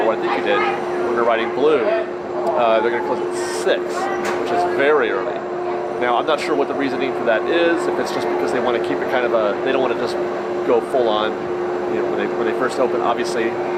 I think you did, when they're riding Blue, they're going to close at 6, which is very early. Now, I'm not sure what the reasoning for that is. If it's just because they want to keep it kind of they don't want to just go full on. You know, when they first open, obviously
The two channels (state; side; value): identical; both; correlation 1.00